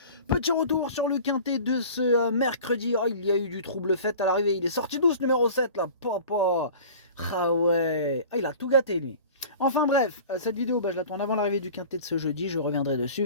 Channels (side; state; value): both; inverted; correlation -0.41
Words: Petit retour sur le quintet de ce mercredi. Oh, il y a eu du trouble fait à l'arrivée. Il est sorti douce numéro 7 là. Papa. Ah ouais. Ah, il a tout gâté lui. Enfin bref, cette vidéo, je la tourne avant l'arrivée du quintet de ce jeudi. Je reviendrai